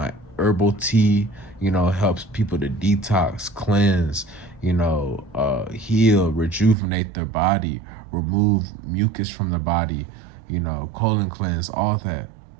herbal tea. Helps people to detox, cleanse, heal, rejuvenate their body, remove mucus from their body, colon cleanse, all that.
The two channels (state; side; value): drops out; left; at 6.8 s